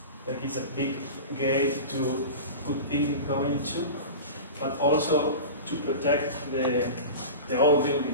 like it's a big gate to put in going to, but also to protect the old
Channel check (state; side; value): inverted; both; correlation -0.31